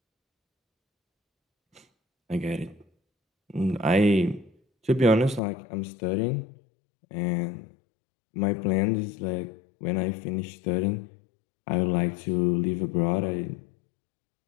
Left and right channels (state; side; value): drops out; right; at 5.4 s